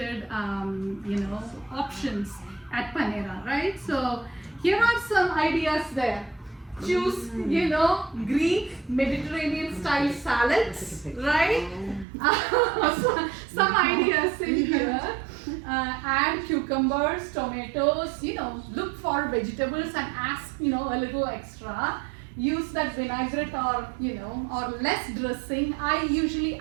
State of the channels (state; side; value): drops out; left; at 12.1 s